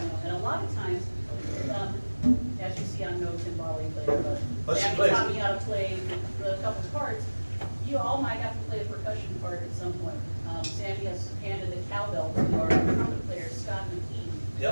you know. And a lot of times, as you see, I'm no timbale player, But she Jackie plays taught it. me how to play the couple parts. You all might have to play a percussion part at some point. Sandy has handed the cowbell to our trumpet player, Scott McKee.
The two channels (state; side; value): inverted; both; correlation -1.00